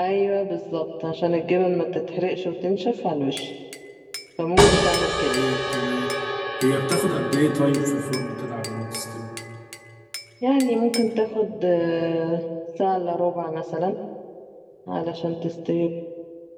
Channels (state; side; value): identical; both; correlation 1.00